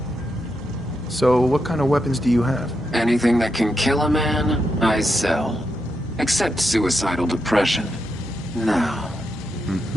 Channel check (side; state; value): both; normal; correlation 0.84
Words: So, what kind of weapons do you have? Anything that can kill a man, I sell. Except suicidal depression. Now.